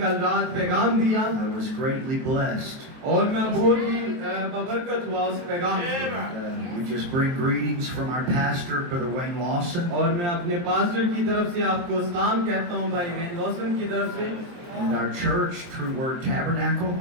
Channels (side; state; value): left; late; 23 ms